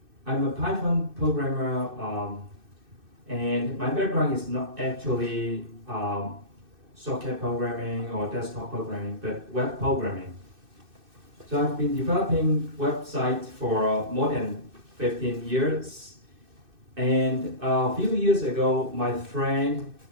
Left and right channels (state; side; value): late; left; 2.6 ms